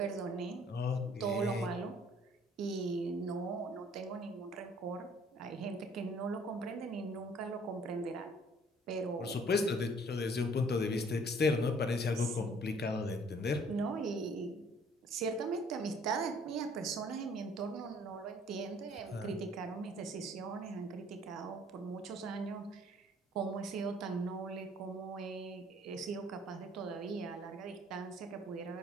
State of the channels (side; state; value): both; normal; correlation 0.57